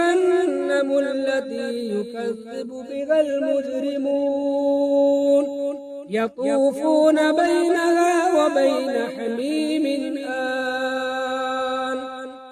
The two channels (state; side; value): identical; both; correlation 1.00